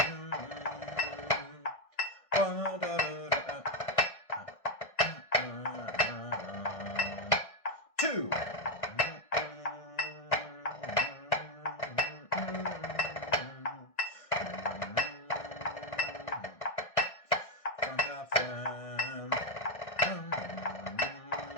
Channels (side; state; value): right; late; 1.6 ms